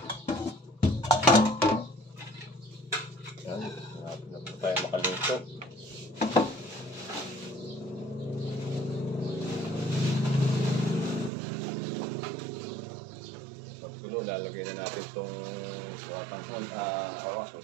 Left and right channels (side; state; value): left; drops out; at 11.3 s